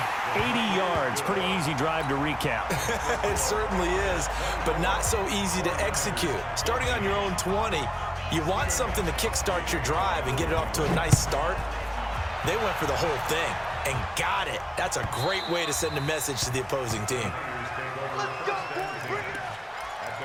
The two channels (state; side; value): identical; both; correlation 1.00